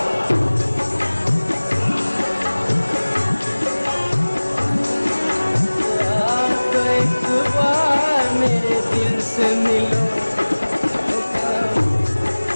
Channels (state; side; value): inverted; both; correlation -1.00